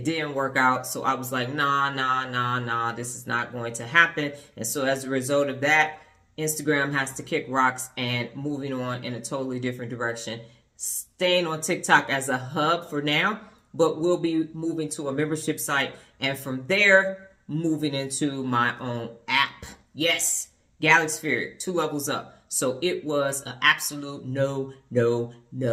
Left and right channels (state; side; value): identical; both; correlation 1.00